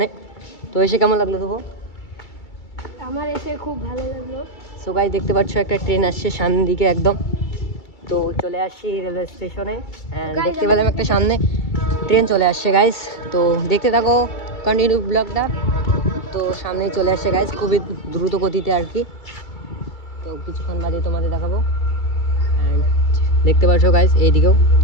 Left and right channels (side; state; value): right; late; 2.3 ms